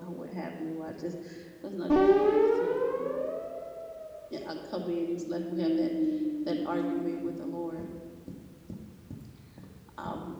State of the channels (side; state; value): both; identical; correlation 1.00